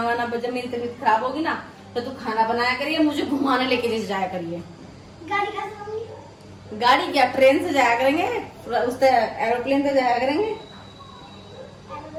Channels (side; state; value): both; identical; correlation 1.00